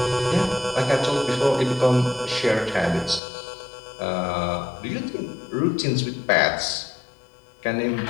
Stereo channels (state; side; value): drops out; right; at 3.2 s